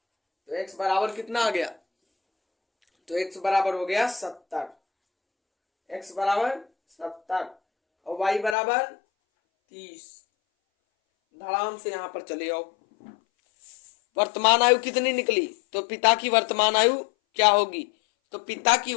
तो x बराबर कितना आ गया, तो x बराबर हो गया 70, x बराबर 70 और y बराबर 30। धड़ाम से यहां पर चले आओ। वर्तमान आयु कितनी निकली, तो पिता की वर्तमान आयु क्या होगी, तो पिता की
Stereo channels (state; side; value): drops out; right; at 8.6 s